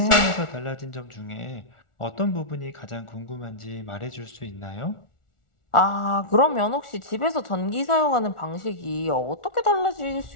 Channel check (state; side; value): late; right; 1.4 ms